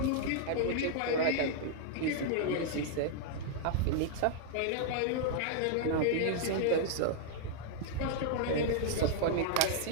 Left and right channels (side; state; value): both; different; correlation -0.01